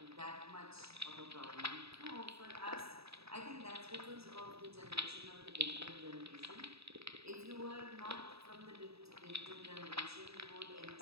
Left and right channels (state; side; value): late; left; 0.78 ms